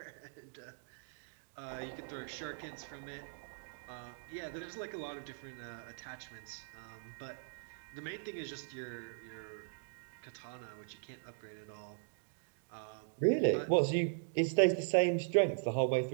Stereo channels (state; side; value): silent; left; digital silence